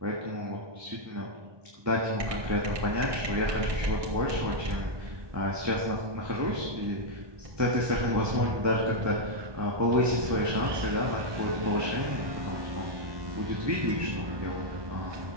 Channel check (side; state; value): left; late; 1.2 ms